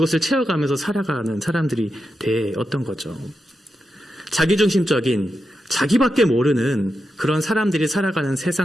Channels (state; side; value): normal; both; correlation 0.88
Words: 채워가면서 살아가는 사람들이 되었던 거죠. 자기중심적인, 자기밖에 모르는 그런 사람들이 살아가는